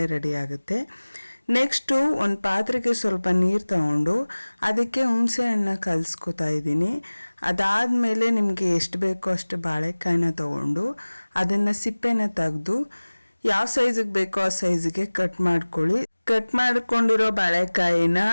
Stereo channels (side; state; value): both; inverted; correlation -1.00